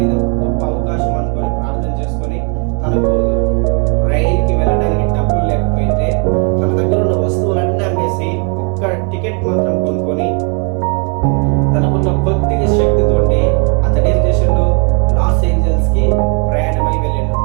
ఇది ఒక గొప్ప అవకాశం అనుకొని ప్రార్థన చేసుకొని, తనకు రైలుకి వెళ్ళడానికి డబ్బులు లేకపోయింటే తన దగ్గర ఉన్న వస్తువులన్నీ అమ్మేసి ఒక్క టికెట్ మాత్రం కొనుక్కొని తనకున్న కొద్దిగా శక్తితోటి అతను ఏం చేసిండు, లాస్ ఏంజల్స్ కి ప్రయాణమై వెళ్ళిండు.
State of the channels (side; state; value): left; quieter; 34.5 dB